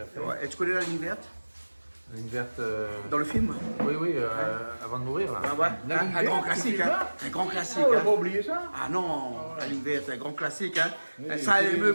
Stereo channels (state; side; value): inverted; both; correlation -1.00